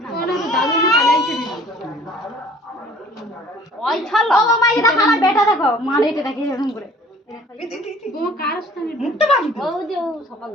ওনা তো দাদু না পালাইছে দিদি ওই ছালো ও মাই এটা আমার বেটা দেখো মারে এটা দেখি এরকম করে ও কার স্থানে মুক্ত বাড়ি ও যে সকাল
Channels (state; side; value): normal; both; correlation 0.51